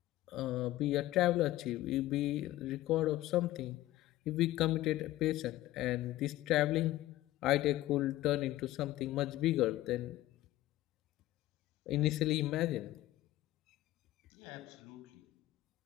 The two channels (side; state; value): right; quieter; 15.8 dB